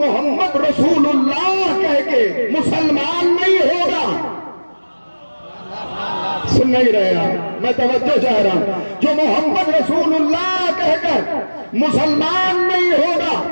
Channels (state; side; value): inverted; both; correlation -1.00